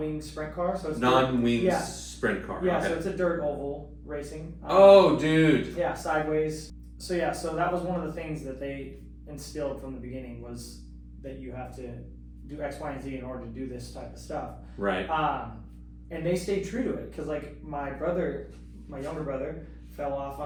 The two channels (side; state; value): both; identical; correlation 1.00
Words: sprint car. So it's non-wing sprint car. Yeah, okay. so it's a dirt oval racing. Oh, dude. Yeah, sideways. So that was one of the things that they instilled from the beginning was that you have to do X, Y, and Z in order to do this type of stuff. Right. And they stayed true to it because like my younger brother fell off